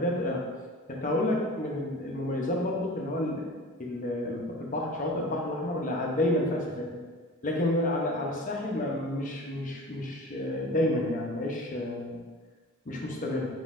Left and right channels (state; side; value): normal; both; correlation 0.38